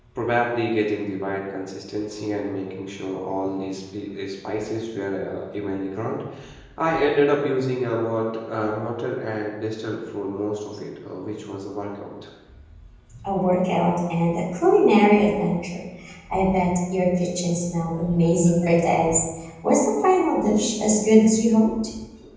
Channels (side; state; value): both; identical; correlation 1.00